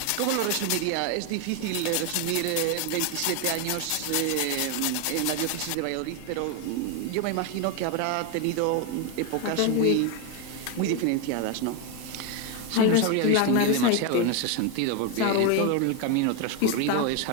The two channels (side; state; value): both; different; correlation 0.01